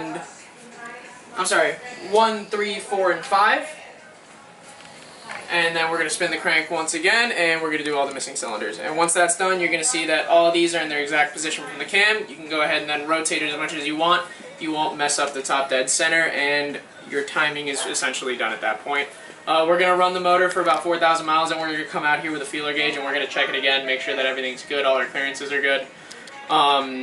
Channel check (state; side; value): identical; both; correlation 1.00